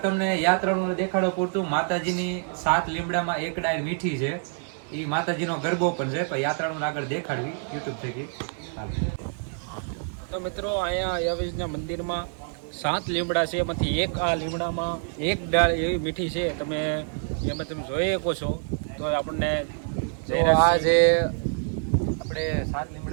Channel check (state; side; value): silent; left; 61 dB below the other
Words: તમને યાત્રાળુને દેખાડો પૂરતું માતાજીની 7 લીમડામાં એક ડાળ મીઠી છે, એ માતાજીનો ગરબો પણ છે, પણ યાત્રાળુને આગળ દેખાડવી યુટ્યુબ થકી. તો મિત્રો અહીંયા અયાવેજના મંદિરમાં 7 લીમડા છે, એમાંથી એક આ લીમડામાં એક ડાળ એવી મીઠી છે, તમે એમાં તમે જોઈ શકો છો. તો આપણને આ જે આપણે 7